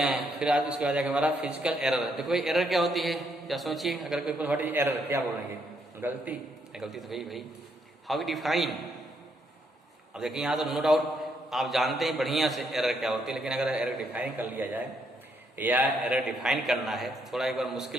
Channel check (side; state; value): both; normal; correlation 0.74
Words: फिर आज इसके बाद आएगा हमारा फिजिकल एरर। देखो भाई एरर क्या होती है, क्या सोचिए, अगर कोई व्हाट इज एरर क्या बोलेंगे, गलती। गलती तो भाई हाउ डिफाइन। अब देखिए यहाँ तो नो डाउट आप जानते हैं बढ़िया से एरर क्या होती है, लेकिन अगर एरर डिफाइन कर लिया जाए या एरर डिफाइन करना है तो थोड़ा एक बार